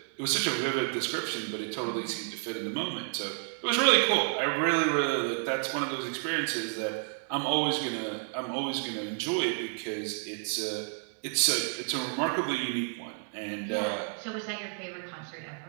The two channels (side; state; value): left; silent; 57 dB below the other